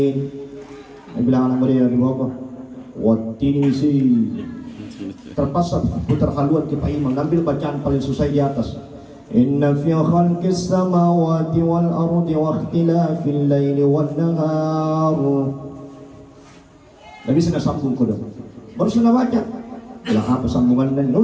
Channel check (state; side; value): identical; both; correlation 1.00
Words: Dia bilang anak muda di bawah, waktu ini sih. Terpaksa putar haluan ke Pak Imam, ambil bacaan paling susah di atas. Inna fi khalqis samawati wal ardi wa ikhtilafil laili wan nahar. Nabi sudah sambung kodok. Baru sudah baca. Lah apa sambungan dan